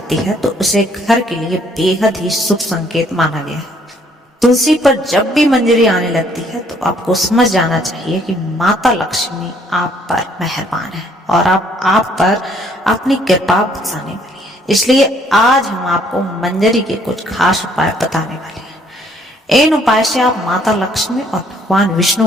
है तो उसे घर के लिए बेहद ही शुभ संकेत माना गया है। तुलसी पर जब भी मंजरी आने लगती है तो आपको समझ जाना चाहिए कि माता लक्ष्मी आप पर मेहरबान है और आप पर अपनी कृपा बरसाने वाली है। इसलिए आज हम आपको मंजरी के कुछ खास उपाय बताने वाले हैं। इन उपाय से आप माता लक्ष्मी और भगवान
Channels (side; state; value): both; normal; correlation 0.64